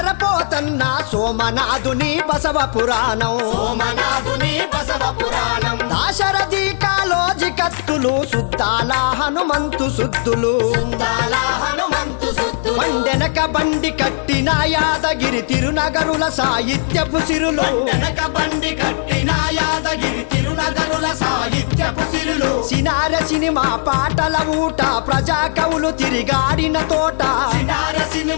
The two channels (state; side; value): silent; right; digital silence